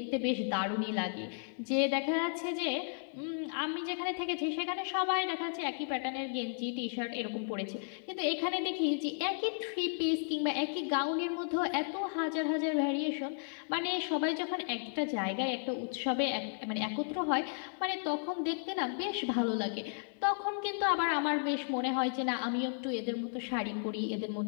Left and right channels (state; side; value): silent; right; digital silence